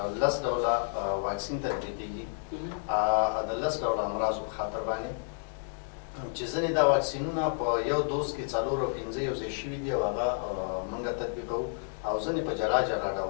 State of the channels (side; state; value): right; silent; digital silence